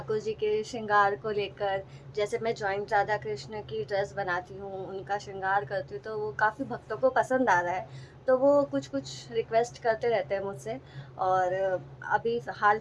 जी के श्रृंगार को लेकर। जैसे मैं जॉइंट राधा कृष्ण की ड्रेस बनाती हूँ, उनका श्रृंगार करती हूँ, तो वो काफ़ी भक्तों को पसंद आ रहा है। तो वो कुछ कुछ रिक्वेस्ट करते रहते हैं मुझसे। और अभी हाल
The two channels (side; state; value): both; identical; correlation 1.00